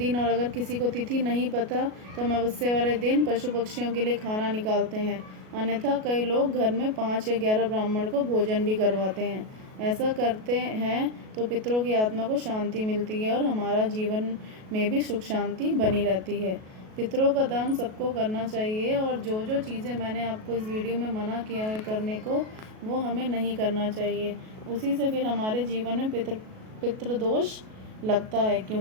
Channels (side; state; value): left; late; 37 ms